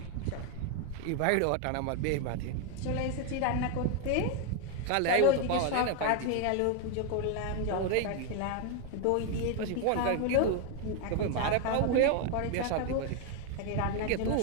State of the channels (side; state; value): both; different; correlation 0.01